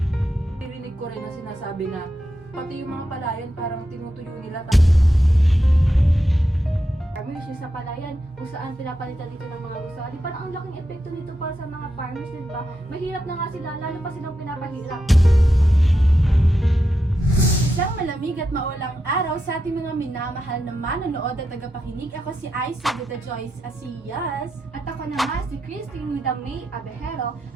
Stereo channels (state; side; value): normal; both; correlation 0.86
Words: Narinig ko rin na sinasabi na pati yung mga palayan parang tinutuyo nila. Farmers yung sa palayan kung saan pinapalitan dito ng mga gusali. Parang ang laking epekto nito para sa mga farmers, di ba? Mahirap na nga sila, lalo pa silang pinapahirap. Isang malamig at maulang araw sa ating mga minamahal na manonood at tagapakinig. Ako si Ice with the Joyce Asiyas. At ako naman si Christine with the May Abejero.